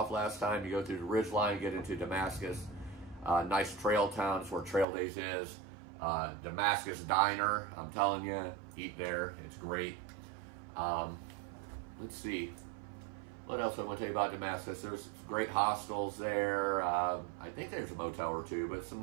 last time. You go through the ridge line, get into Damascus. Nice trail town. It's where Trail Days is. Damascus Diner, I'm telling you, eat there. It's great. Let's see. What else I want to tell you about Damascus? There's great hostels there. I think there's a motel or two, but some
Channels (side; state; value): left; drops out; at 4.9 s